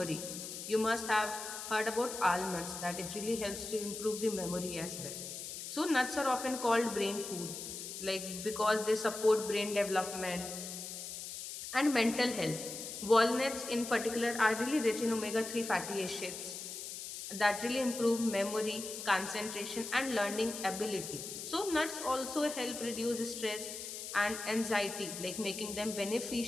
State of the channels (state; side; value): noise; left; hiss, 8 dB below the sound